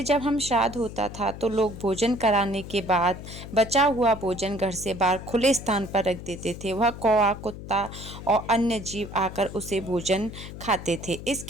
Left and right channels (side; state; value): left; noise; hum, 12 dB below the sound